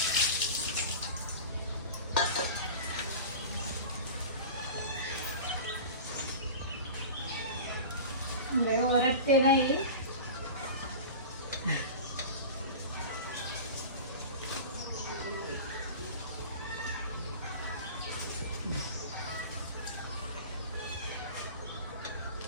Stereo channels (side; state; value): both; inverted; correlation -0.33